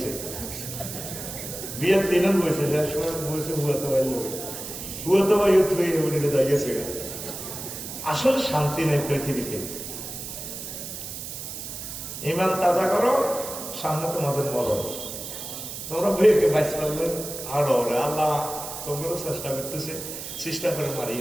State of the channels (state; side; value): noise; right; hiss, 8 dB below the sound